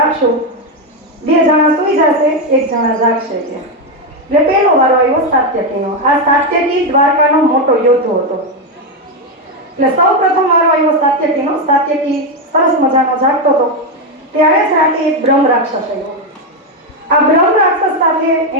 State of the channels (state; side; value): normal; both; correlation 0.07